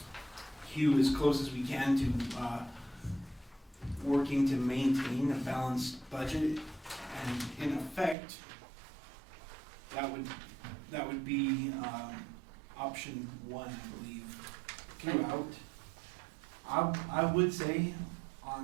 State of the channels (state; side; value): drops out; left; at 8.2 s